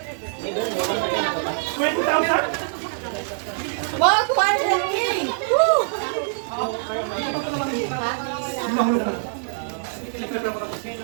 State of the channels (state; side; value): silent; left; digital silence